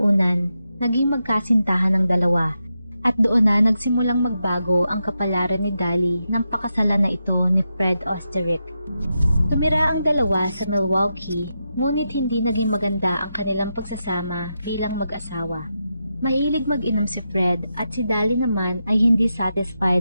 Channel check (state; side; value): inverted; both; correlation -0.87